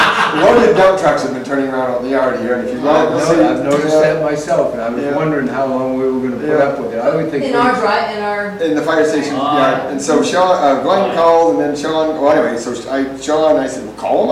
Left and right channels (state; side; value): identical; both; correlation 1.00